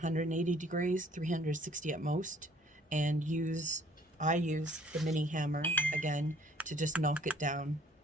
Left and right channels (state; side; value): normal; both; correlation 0.58